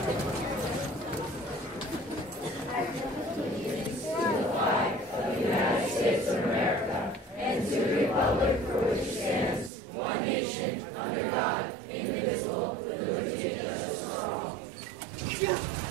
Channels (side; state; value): left; drops out; at 9.7 s